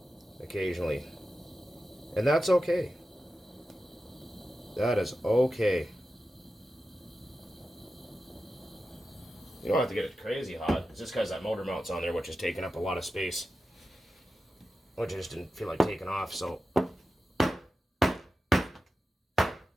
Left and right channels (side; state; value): both; normal; correlation 0.92